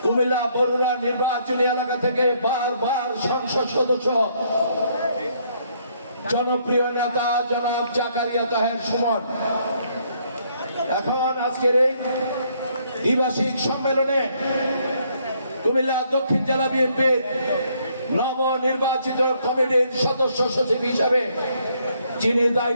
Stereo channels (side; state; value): both; inverted; correlation -0.69